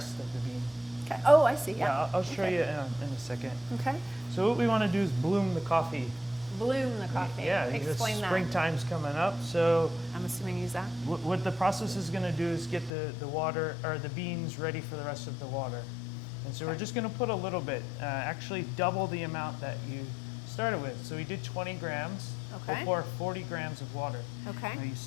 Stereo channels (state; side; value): drops out; right; at 12.9 s